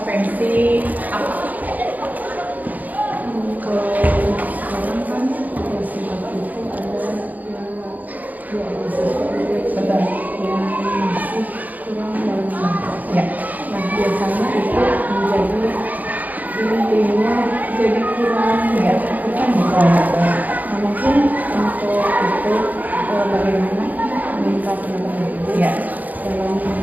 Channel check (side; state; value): left; late; 0.080 ms